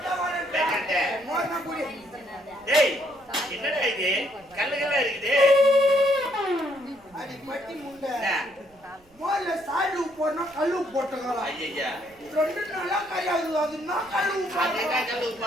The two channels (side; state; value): right; noise; rumble, 30 dB below the sound